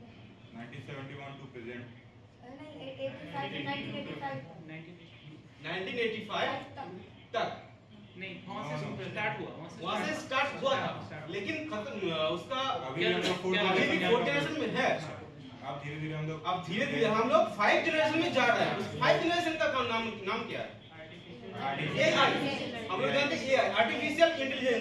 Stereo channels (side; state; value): both; identical; correlation 1.00